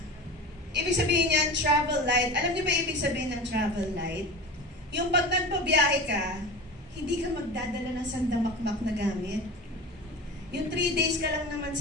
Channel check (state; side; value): normal; both; correlation 0.31